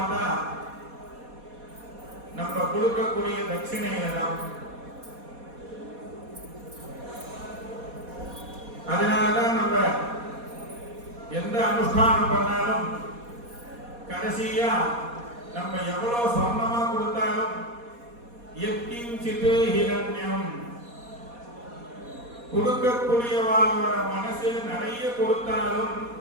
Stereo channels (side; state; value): left; late; 4.2 ms